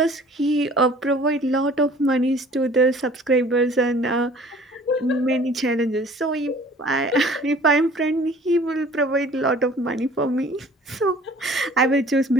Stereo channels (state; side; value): normal; both; correlation 0.51